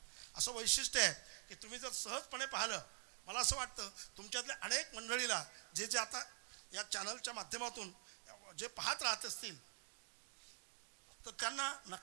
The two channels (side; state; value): left; silent; digital silence